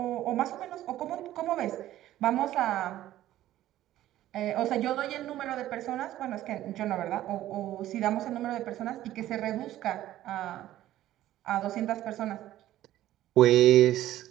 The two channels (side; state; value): left; quieter; 13.8 dB